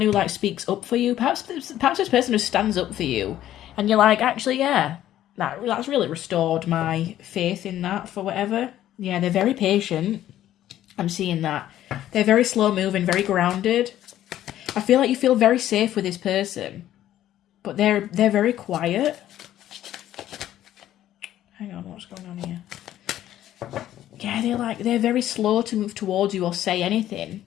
who, like, speaks up for you. Perhaps this person just stands up for you. And you're like, actually, yeah, that's really restored my faith in that for whatever. Yeah, they're very patient. I'm seeing that. They're very slow moving, very grounded. I feel like you feel very safe with this person. But they're very quiet. Hang on, what's going on here? Yeah, they're very slow to move towards you or say anything.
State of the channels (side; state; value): right; quieter; 12.5 dB